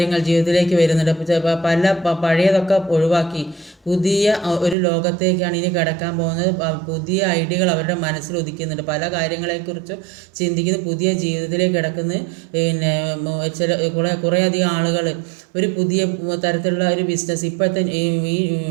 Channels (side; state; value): left; drops out; at 4.8 s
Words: ജീവിതത്തിലേക്ക് വരുന്നുണ്ട്. പഴയതൊക്കെ ഒഴിവാക്കി പുതിയ ഒരു ലോകത്തേക്കാണ് ഇനി കടക്കാൻ പോകുന്നത്. പുതിയ ഐഡിയകൾ അവരുടെ മനസ്സിൽ ഉദിക്കുന്നുണ്ട്. പല കാര്യങ്ങളെക്കുറിച്ചും ചിന്തിക്കുന്ന പുതിയ ജീവിതത്തിലേക്ക് കിടക്കുന്ന കുറേയധികം ആളുകൾ ഒരു പുതിയ തരത്തിലുള്ള ഒരു ബിസിനസ്